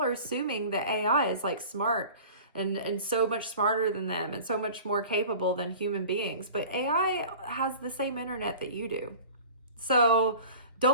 assuming that AI is like smart and so much smarter than them and so much more capable than human beings. But AI has the same internet that you do. So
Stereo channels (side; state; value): both; inverted; correlation -0.41